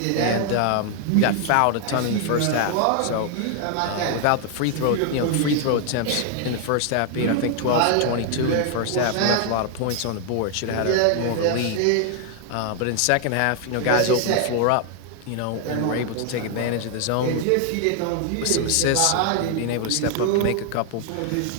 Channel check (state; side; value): different; both; correlation 0.00